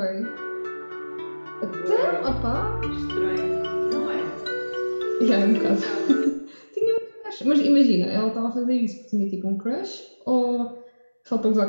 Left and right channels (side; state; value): both; inverted; correlation -1.00